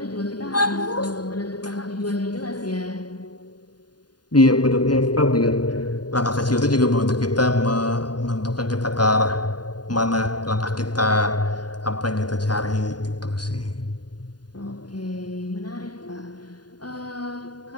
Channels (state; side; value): late; right; 0.70 ms